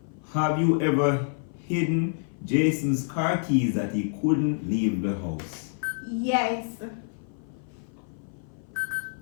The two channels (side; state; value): right; silent; 56 dB below the other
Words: Have you ever hidden Jason's car keys that he couldn't leave the house? Yes.